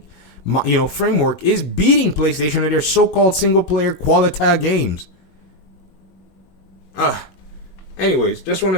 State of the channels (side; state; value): right; late; 21 ms